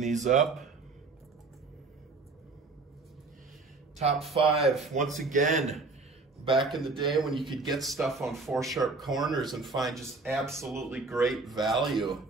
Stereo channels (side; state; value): left; quieter; 3.8 dB